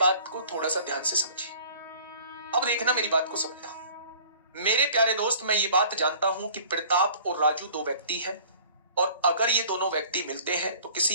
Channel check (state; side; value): inverted; both; correlation -0.48